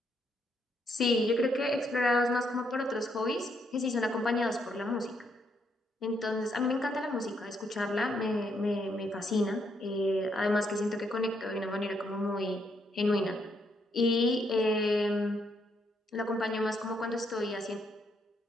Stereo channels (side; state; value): both; normal; correlation 0.75